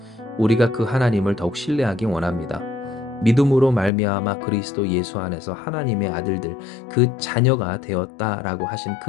우리가 그 하나님을 더욱 신뢰하기 원합니다. 믿음으로 말미암아 그리스도 예수 안에서 하나님의 아들들, 그 자녀가 되었다라고 하신 그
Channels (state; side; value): drops out; right; at 3.9 s